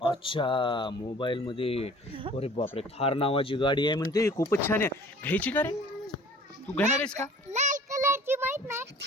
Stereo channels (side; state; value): both; normal; correlation 0.49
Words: अच्छा, मोबाईल मध्ये. अरे बापरे, थार नावाची गाडी आहे म्हणते, खूपच छान आहे. घ्यायची का रे? तू घेणार आहेस का? लाल कलरची माहित